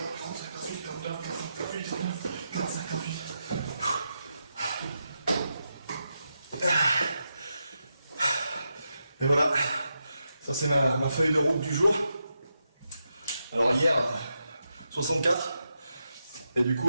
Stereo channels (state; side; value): inverted; both; correlation -0.86